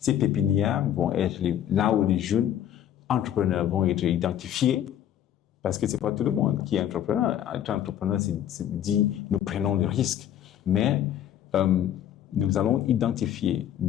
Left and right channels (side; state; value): right; quieter; 10.7 dB